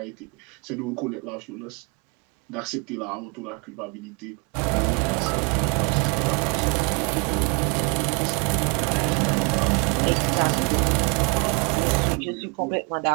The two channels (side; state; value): left; quieter; 33.1 dB